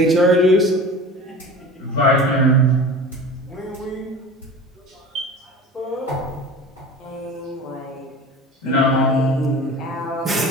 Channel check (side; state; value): both; normal; correlation 0.36